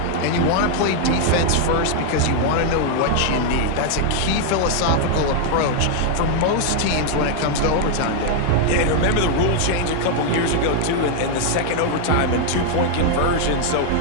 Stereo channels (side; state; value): both; different; correlation 0.00